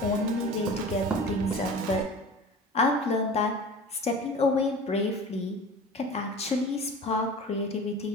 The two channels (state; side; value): normal; both; correlation 0.37